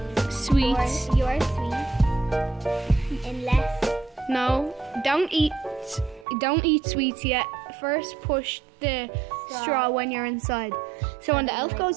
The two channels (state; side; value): drops out; left; at 6.2 s